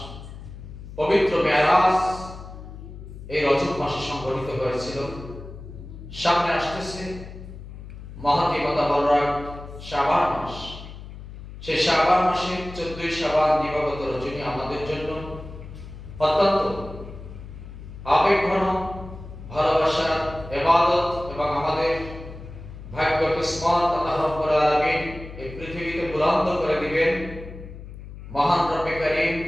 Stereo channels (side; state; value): left; noise; hum, 13 dB below the sound